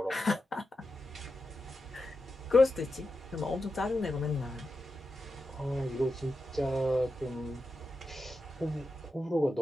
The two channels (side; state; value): both; normal; correlation 0.89